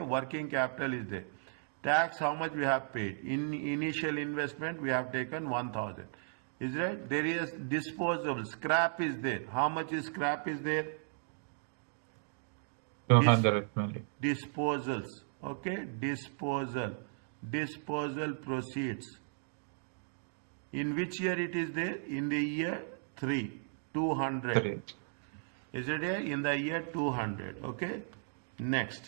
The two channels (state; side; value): silent; left; digital silence